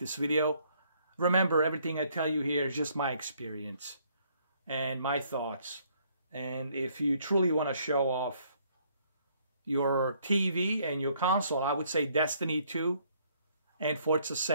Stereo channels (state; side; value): inverted; both; correlation -0.66